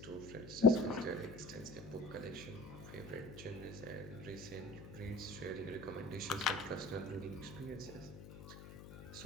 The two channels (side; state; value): left; noise; hum, 14 dB below the sound